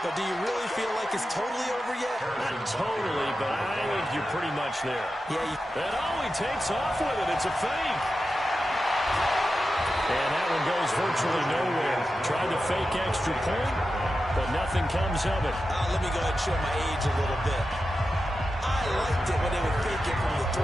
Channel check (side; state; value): both; normal; correlation 0.91